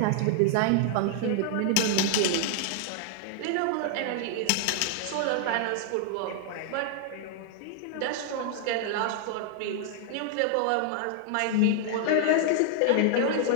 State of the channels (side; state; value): both; different; correlation 0.00